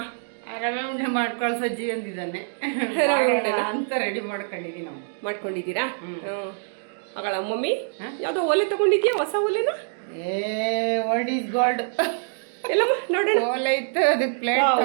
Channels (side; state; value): left; silent; digital silence